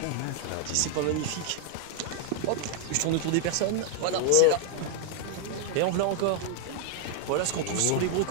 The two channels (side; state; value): both; different; correlation 0.00